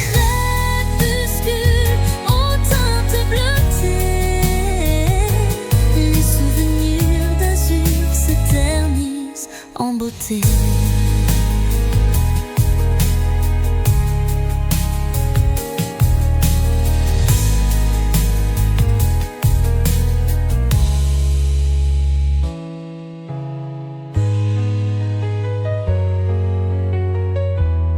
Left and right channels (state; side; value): identical; both; correlation 1.00